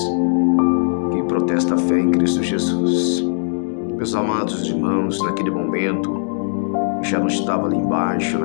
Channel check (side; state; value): right; silent; digital silence